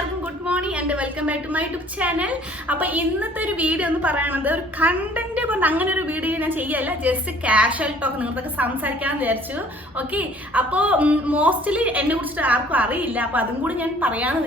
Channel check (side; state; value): both; normal; correlation 0.54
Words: good morning and welcome back to my YouTube channel. അപ്പൊ ഇന്നത്തെ ഒരു വീഡിയോ എന്ന് പറയുന്നത് ഒരു കണ്ടന്റ് പറഞ്ഞ അങ്ങനെ ഒരു വീഡിയോ ഞാൻ ചെയ്യല്ല, ജസ്റ്റ് കാഷ്വൽ ടോക്ക് നിങ്ങൾക്കൊക്കെ സംസാരിക്കാമെന്ന് വിചാരിച്ചു. ഓക്കെ, അപ്പോൾ മോസ്റ്റ്ലി എന്നെ കുറിച്ചിട്ട് ആർക്കും അറിയില്ല, അപ്പൊ അതും കൂടി ഞാൻ